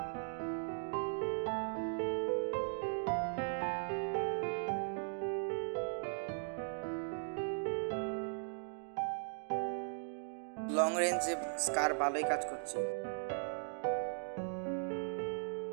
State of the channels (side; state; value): left; silent; 52 dB below the other